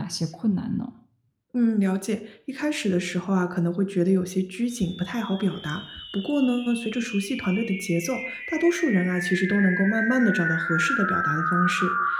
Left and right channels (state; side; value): identical; both; correlation 1.00